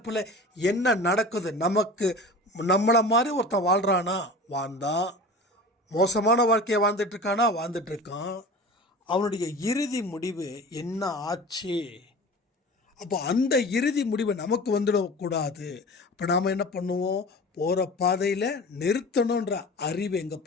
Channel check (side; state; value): both; normal; correlation 0.36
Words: என்ன நடக்குது, நம்மளை மாதிரி ஒருத்தன் வாழ்கிறானா வாழ்ந்தான், மோசமான வாழ்க்கையை வாழ்ந்துட்டுருக்கான், அவனுடைய இறுதி முடிவு என்ன ஆச்சு? அப்போ அந்த இறுதி முடிவு நமக்கு வந்துடக்கூடாது. அப்போ நாம் என்ன பண்ணுவோம்? போகிற பாதையில் நிறுத்தணுன்ற அறிவு எங்கே